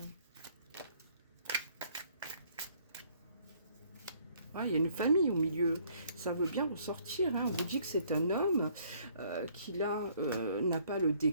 Ah, il y a une famille au milieu. Ça veut bien ressortir. Hein. On vous dit que c'est un homme qui là n'a pas le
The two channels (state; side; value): inverted; both; correlation -0.63